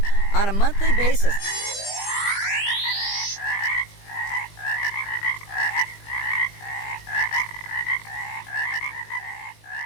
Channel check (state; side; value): late; right; 20 ms